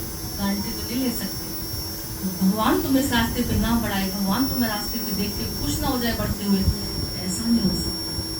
गारंटी तो नहीं ले सकते। भगवान तुम्हें इस रास्ते पे ना बढ़ाए, भगवान तुम्हें रास्ते पे देख के खुश ना हो जाए बढ़ते हुए, ऐसा नहीं हो सकता।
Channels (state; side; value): identical; both; correlation 1.00